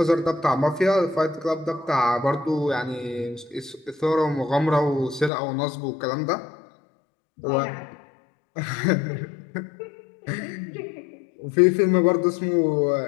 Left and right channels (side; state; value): right; drops out; at 5.3 s